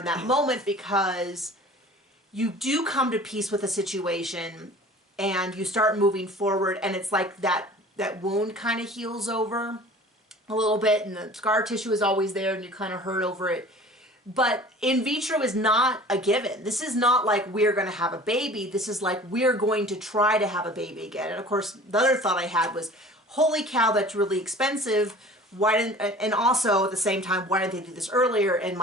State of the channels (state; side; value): normal; both; correlation 0.44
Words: that moment because you do come to peace with a situation and you start moving forward and it's like that wound kind of heals over a little bit and the scar tissue is always there and you kind of hurt over it. But in vitro is not a given. This is not like we're going to have a baby. This is like we're going to try to have a baby again. And of course, the other thought I had was, holy cow, that's really expensive. And also at the same time, why didn't they do this earlier? And